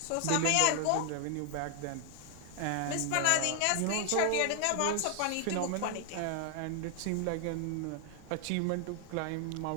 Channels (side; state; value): both; different; correlation 0.00